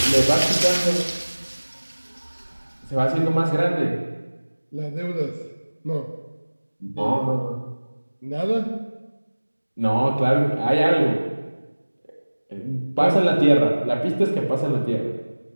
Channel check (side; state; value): both; inverted; correlation -1.00